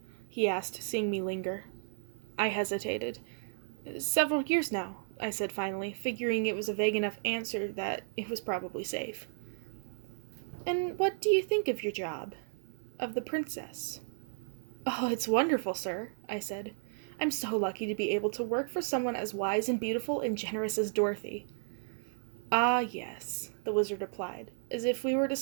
He asked, seeing me linger. I hesitated. Several years now, I said finally, figuring it was a vague enough answer that it was probably safe. And what do you think of your job? Of the princess? Oh, it's wonderful, sir, I said. I'm so lucky to be able to work for someone as wise and beautiful and generous as Dorothy. Ah, yes, the wizard replied, as if we were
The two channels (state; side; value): silent; left; 55 dB below the other